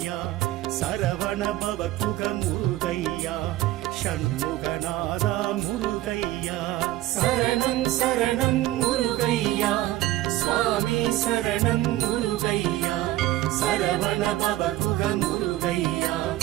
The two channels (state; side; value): quieter; left; 15.7 dB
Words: சரவண பவகுக முருகையா ஷண்முகநாதா முருகையா சரணம் சரணம் முருகையா சுவாமி சரணம் முருகையா சரவண பவகுக முருகையா